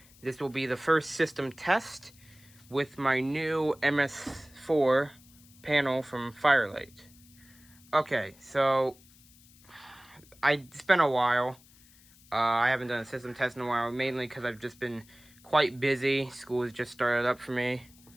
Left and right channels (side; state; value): left; noise; hiss, 26 dB below the sound